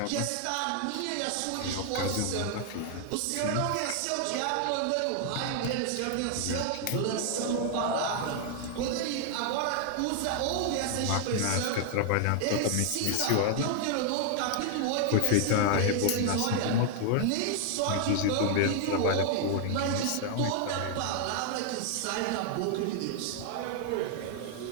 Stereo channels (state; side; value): different; both; correlation 0.00